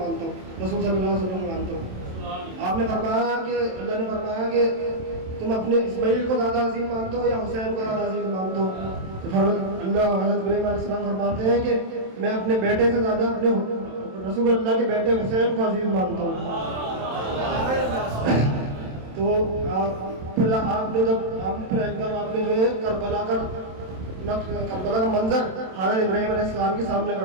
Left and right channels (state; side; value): late; left; 27 ms